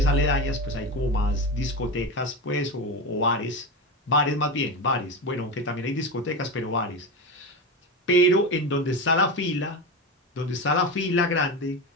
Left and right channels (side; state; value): both; normal; correlation 0.20